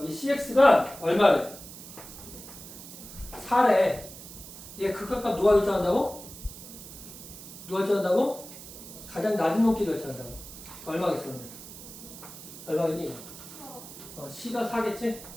cx가 얼마래? 4래. 얘 극한값 누가 결정한다고? 누가 결정한다고? 가장 낮은 높이 결정한다고. 얼마겠어? 그러면? 얼마겠니? c가 4겠지?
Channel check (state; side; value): noise; right; hiss, 14 dB below the sound